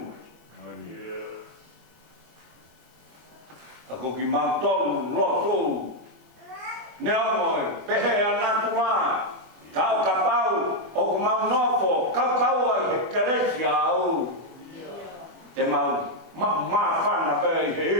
Ako ki mau tolu, lotu. Nea moi, pehe anatu la. Kau kapau, o ku mau nofo, kau ai he keresi au. Te mau whana pēi he.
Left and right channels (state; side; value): late; left; 24 ms